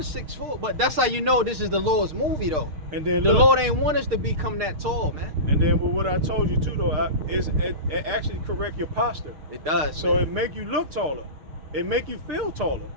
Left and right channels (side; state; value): left; late; 6.5 ms